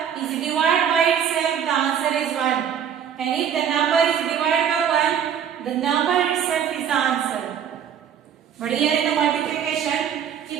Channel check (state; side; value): quieter; left; 8.5 dB